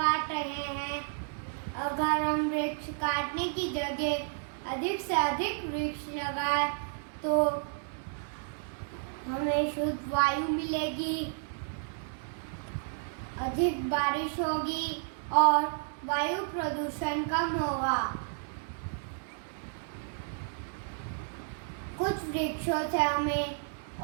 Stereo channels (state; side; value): silent; left; digital silence